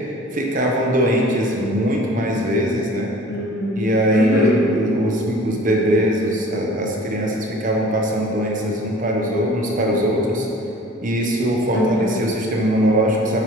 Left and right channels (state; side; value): normal; both; correlation 0.46